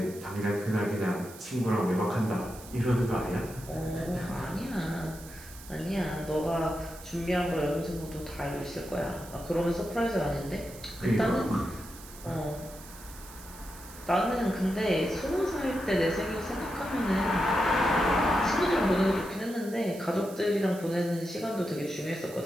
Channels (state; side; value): noise; right; hiss, 17 dB below the sound